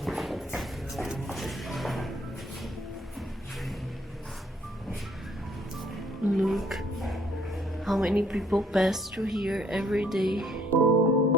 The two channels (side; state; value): both; normal; correlation 0.65